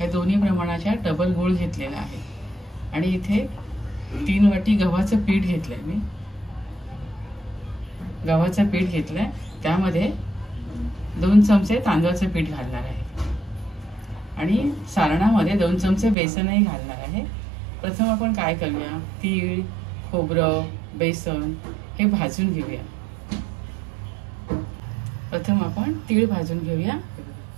दोन्ही प्रमाणाच्या डबल गूळ घेतलेला आहे आणि इथे 3 वाटी गव्हाचं पीठ घेतलंय। मी गव्हाचं पीठ घेतलंय, त्यामध्ये 2 चमचे तांदळाचं पीठ घालणार आहे आणि सारणामध्ये 2 चमचे बेसनही घालणार आहे। प्रथम आपण काय करूया, तीळ, खोबरं, बेसन हे भाजून घेऊया। प्रथम आपण तीळ भाजून घेऊया।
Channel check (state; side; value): drops out; left; at 16.2 s